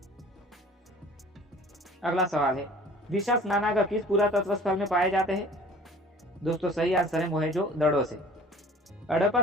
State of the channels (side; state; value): both; normal; correlation 0.48